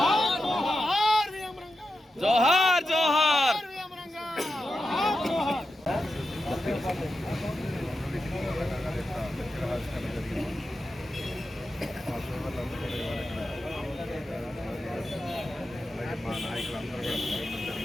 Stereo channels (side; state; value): both; normal; correlation 0.90